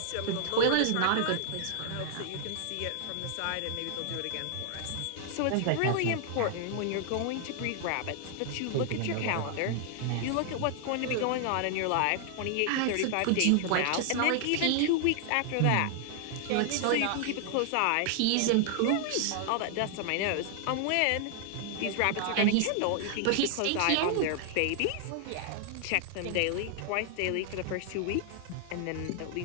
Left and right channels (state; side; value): different; both; correlation 0.00